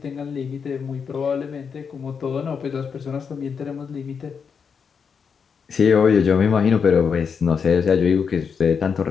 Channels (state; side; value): quieter; right; 6.3 dB